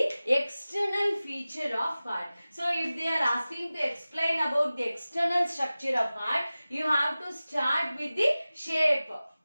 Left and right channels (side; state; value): both; inverted; correlation -0.97